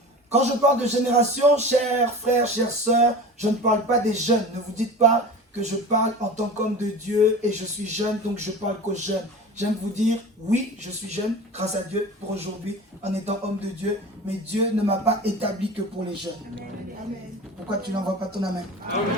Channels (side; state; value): both; normal; correlation 0.34